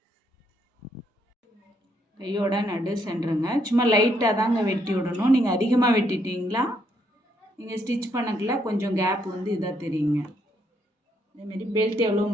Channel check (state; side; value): normal; both; correlation 0.73